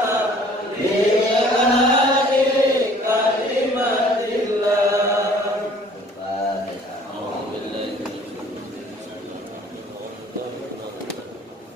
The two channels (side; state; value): both; normal; correlation 0.54